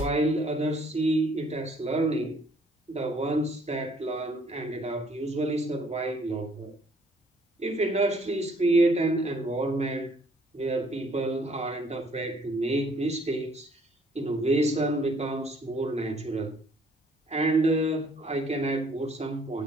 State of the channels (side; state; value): both; normal; correlation 0.62